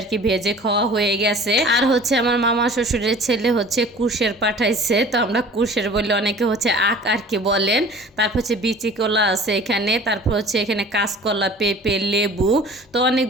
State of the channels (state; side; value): normal; both; correlation 0.45